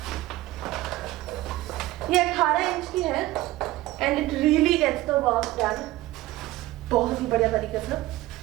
ये 18 इंच की है and it really gets the work done बहुत ही बढ़िया तरीके से।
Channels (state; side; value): quieter; left; 17.5 dB